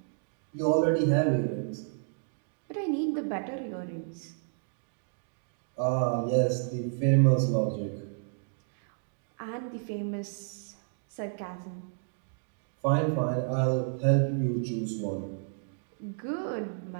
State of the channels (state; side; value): silent; left; digital silence